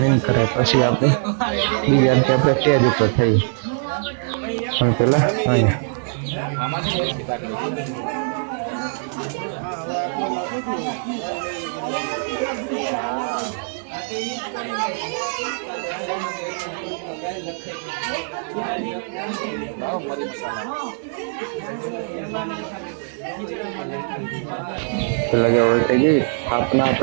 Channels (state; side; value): silent; left; digital silence